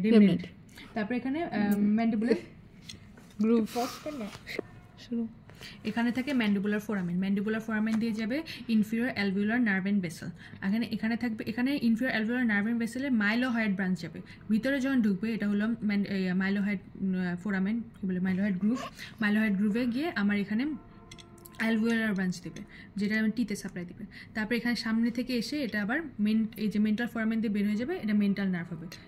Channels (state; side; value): identical; both; correlation 1.00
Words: রেমিনেন্ট। তারপরে এখানে ম্যান্ডিবুলার গ্রুভ, এখানে থাকে ম্যান্ডিবুলার ফোরামেন দিয়ে যাবে inferior alveolar nerve and vessel. এখানে থাকবে, এখানে ইনফিরিয়র অ্যালভিউলার নার্ভ এন্ড ভেসেলের মাইলোহাইড ব্রাঞ্চ যাবে ভিতরে যখন ঢুকবে, এটা হলো মাইলোহাইড ফোরামেন, কি বলে মাইলোহাইড গ্রুভে গিয়ে আমার এখানে অ্যালভিওলার ব্রাঞ্চ দেবে, যেটা টিতে সাপ্লাই দেবে। তারপর এখানে সামনে থেকে এসে এটা আবার এই যে মেন্টাল ফোরামেন দিয়ে বের হয়ে যাবে, এটা মেন্টাল নার্ভ হবে।